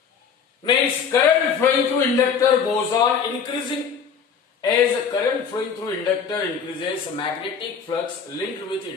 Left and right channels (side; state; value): right; quieter; 6.5 dB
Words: Means current flowing through inductor goes on increasing. As current flowing through inductor increases, magnetic flux linked with